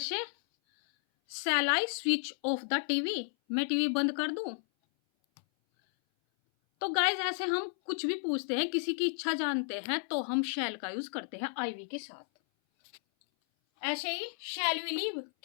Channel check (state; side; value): silent; right; 56 dB below the other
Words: shall I switch off the TV, मैं टीवी बंद कर दूं? तो गाइस, ऐसे हम कुछ भी पूछते हैं, किसी की इच्छा जानते हैं तो हम शैल का यूज करते हैं आई वी के साथ। ऐसे ही शैल वी लीव,